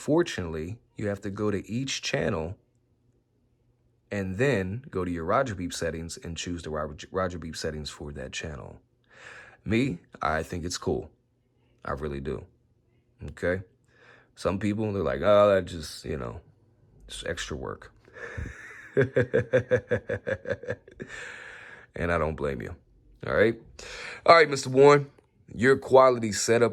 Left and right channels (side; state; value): both; identical; correlation 1.00